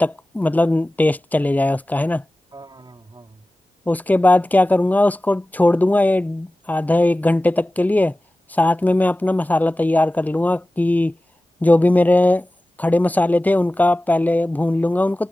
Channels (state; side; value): normal; both; correlation 0.96